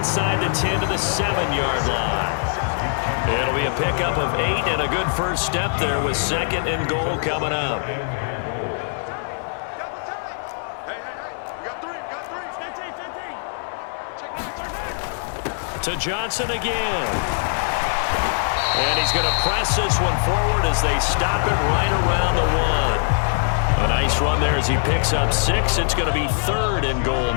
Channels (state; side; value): silent; right; digital silence